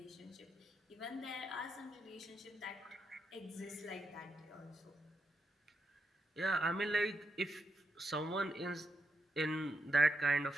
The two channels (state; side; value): normal; both; correlation 0.83